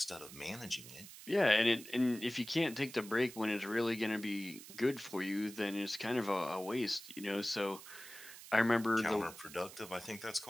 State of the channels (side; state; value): right; noise; hiss, 15 dB below the sound